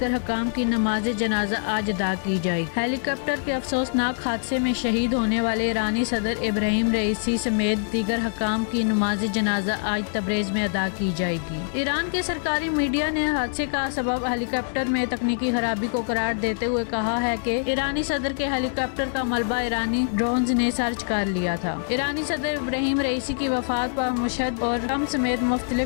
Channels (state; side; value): silent; right; digital silence